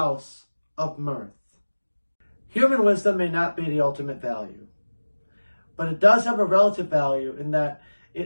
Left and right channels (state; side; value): inverted; both; correlation -1.00